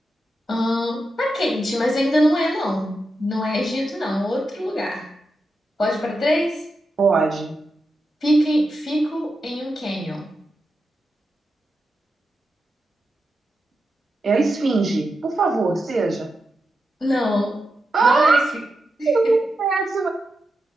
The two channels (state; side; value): normal; both; correlation 0.88